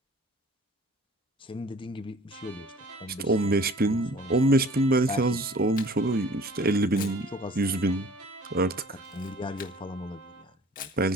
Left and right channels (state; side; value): normal; both; correlation 0.49